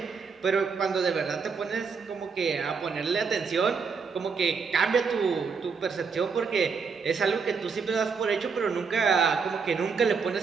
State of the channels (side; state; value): left; quieter; 5.4 dB